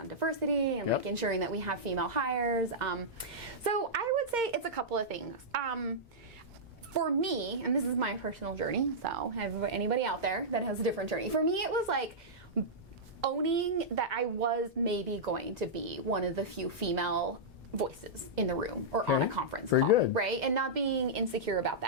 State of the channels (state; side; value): normal; both; correlation -0.11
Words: diversity and like ensuring that we have female hires. So I would say it's a couple of things. For me, and this is my personal journey, so anybody out there that has a different journey, for me it was like owning that I was maybe going to be one of the few female voices in the room or on a conference call, right? And not being insecure about